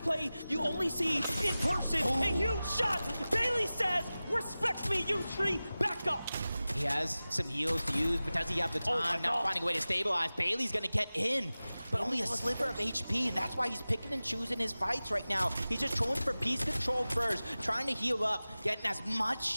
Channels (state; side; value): inverted; both; correlation -0.97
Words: play you only see in person. A huge shot. Bailey says, respect me, Yusri, back up. He has some heals to use, but does he have the time? Not finding a way to stabilize. Bailey's gonna get in, but only a sliver of HP, and that's why he's picking and choosing his fights right now. He's just trolling for piece control first, trying to heal up, getting as much